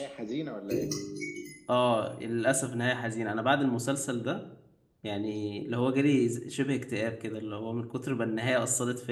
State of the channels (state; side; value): identical; both; correlation 1.00